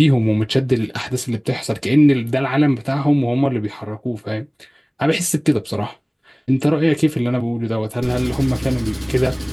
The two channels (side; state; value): both; identical; correlation 1.00